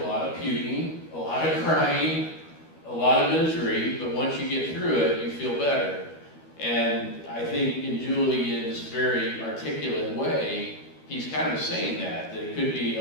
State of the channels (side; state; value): right; late; 12 ms